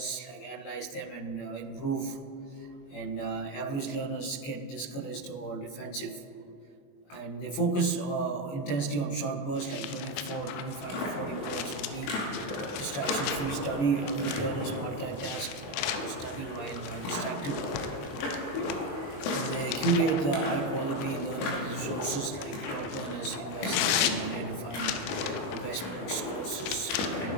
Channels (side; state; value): right; late; 21 ms